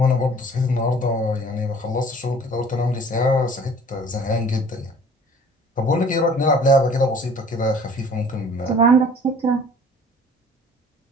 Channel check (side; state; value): both; normal; correlation 0.51